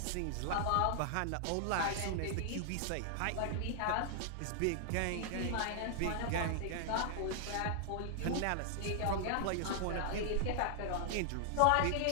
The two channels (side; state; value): both; different; correlation 0.00